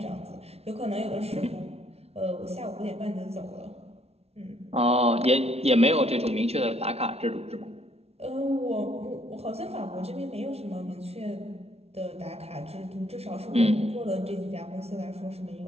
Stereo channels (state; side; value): late; left; 0.30 ms